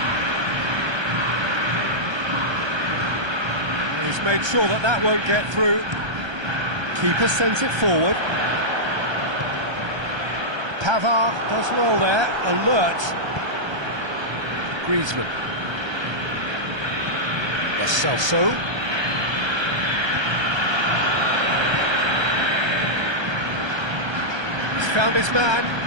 He's made sure that won't get through. Keeper sends it forward. Pavard does well there, alert. Griezmann. Lo Celso. He's found his man.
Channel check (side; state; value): left; late; 1.3 ms